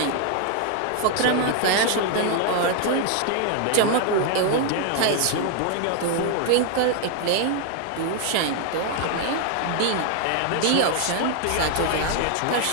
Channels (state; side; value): different; both; correlation 0.00